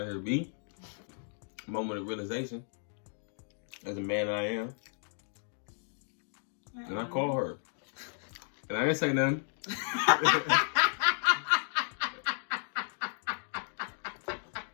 here, B. Moment of realization. As a man I am. And I call her. And I didn't say nothing.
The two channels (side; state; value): right; silent; 55 dB below the other